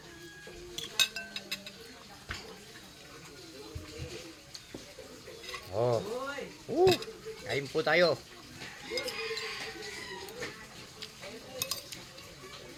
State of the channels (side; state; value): both; identical; correlation 1.00